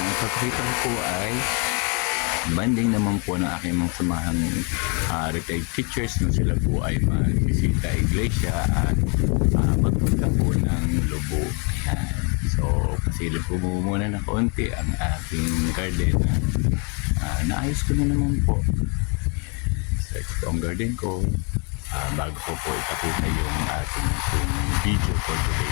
ipakita ko po ay banding naman po ng aking mga samahang retired teachers na sila po ay magbisita iglesia at magpunta po ng Lobo. Ayan. So, pasilip po muna na kaunti ang aking garden na naayos ko na naman po. So, ito po ang garden ko. Bago ko po ipakita yung ating video for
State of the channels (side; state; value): right; quieter; 35.3 dB